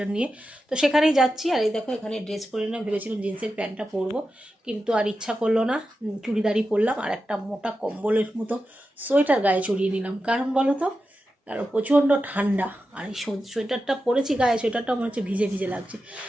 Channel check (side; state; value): both; normal; correlation 0.91